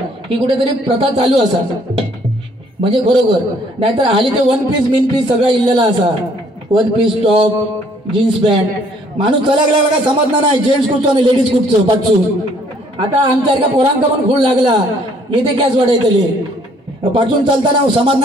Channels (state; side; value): normal; both; correlation 0.62